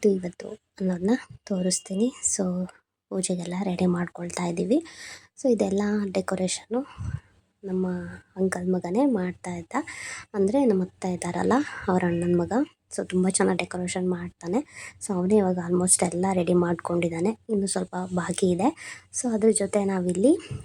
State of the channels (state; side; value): identical; both; correlation 1.00